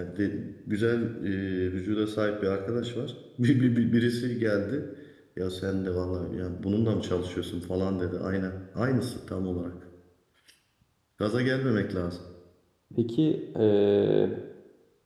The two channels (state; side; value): identical; both; correlation 1.00